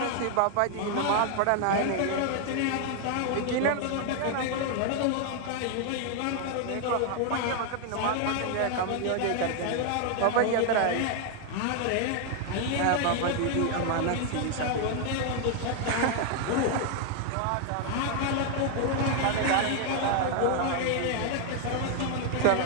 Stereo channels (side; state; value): both; different; correlation 0.00